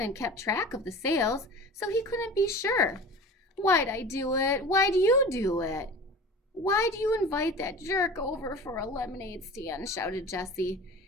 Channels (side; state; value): both; normal; correlation 0.37